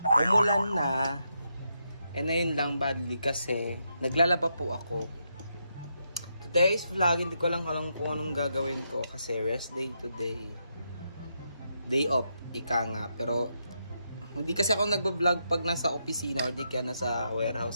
Umulan na. And ayun lang badly kasi naglalaba po ako. Today's vlog, hindi ko lang alam kung anong gagawin ko kasi rest day today. Day off, ika nga. Pero hindi kasi ako nagbablog pag nasa opisina or di kaya nasa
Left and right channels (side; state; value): both; inverted; correlation -0.82